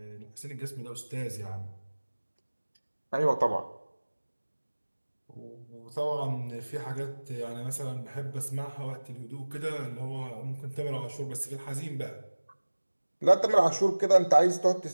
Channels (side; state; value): both; inverted; correlation -1.00